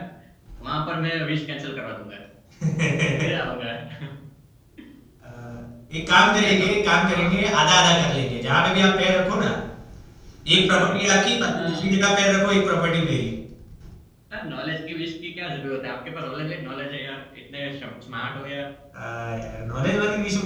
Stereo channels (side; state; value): both; identical; correlation 1.00